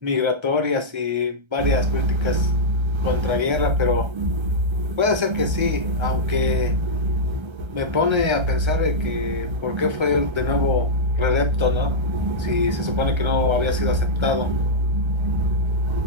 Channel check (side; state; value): left; late; 1.3 ms